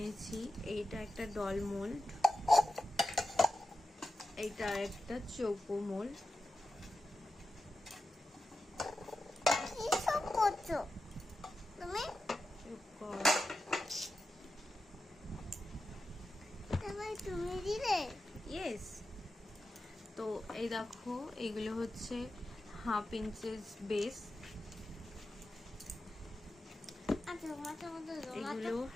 এইটা একটা ডল মোল্ড, এইটা একটা চৌকো মোল্ড। কি সব করছো তুমি? তুমি দিলে? ইয়েস। তো এই দেখো এইগুলো হচ্ছে 1/2 ইঞ্চেস বেস, এগুলো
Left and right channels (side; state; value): both; normal; correlation 0.91